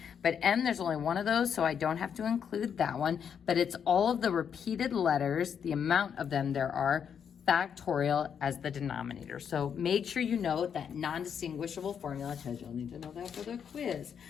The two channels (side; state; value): right; quieter; 7.6 dB